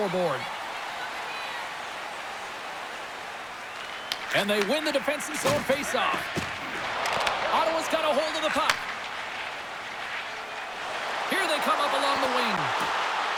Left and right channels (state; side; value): identical; both; correlation 1.00